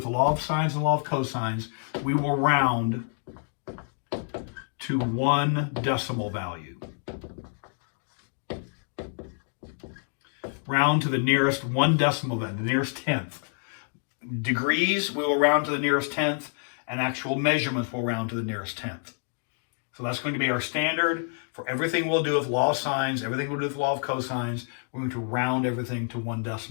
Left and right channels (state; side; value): silent; right; 60 dB below the other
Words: the law of sines and law of cosines, we will round to one decimal value. Round to the nearest one decimal value, the nearest tenth. Degrees, we will round to the nearest tenth, and actual measurements will round to the nearest tenth. So that's going to be our standard for everything we'll do with law of sines, everything we'll do with law of cosines. We're going to round everything to one